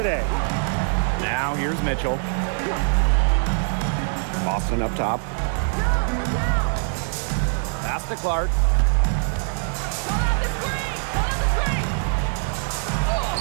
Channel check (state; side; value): silent; left; 63 dB below the other